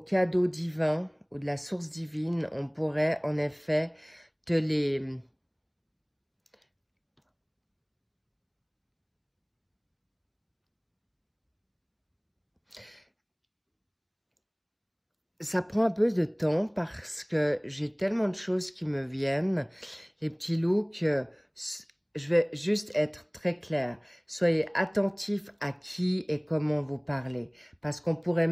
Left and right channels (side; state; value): both; identical; correlation 1.00